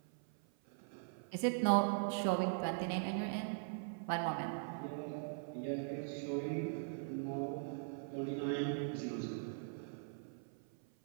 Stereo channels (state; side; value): silent; left; 50 dB below the other